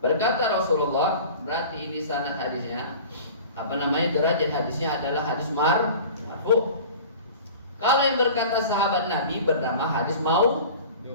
berkata Rasulullah, berarti ini sanad hadisnya derajat hadisnya adalah hadis marfu. Kalau yang berkata sahabat Nabi bernama hadis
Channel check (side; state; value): both; inverted; correlation -0.40